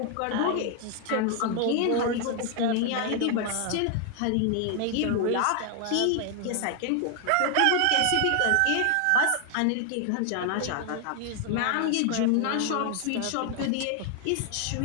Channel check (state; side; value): different; both; correlation 0.00